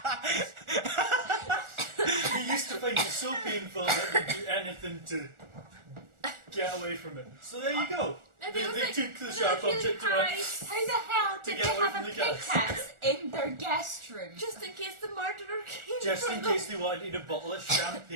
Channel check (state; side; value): late; left; 1.4 ms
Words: he used to find it so painful that he'd do anything to get away from it. So there you go. Maybe it was They like took the when sharp they were object feeling away. high, How the hell To did get they away have from a the gas. pickaxe in their guest room? just in case the murderer came. Just for in them. case they wanted a bottle of